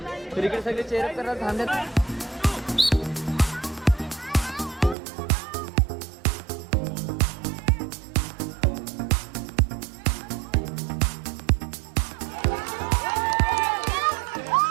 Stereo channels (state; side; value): drops out; left; at 5.0 s